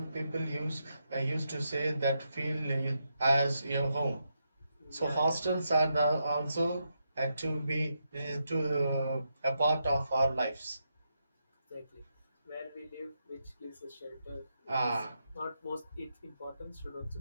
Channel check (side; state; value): both; inverted; correlation -0.83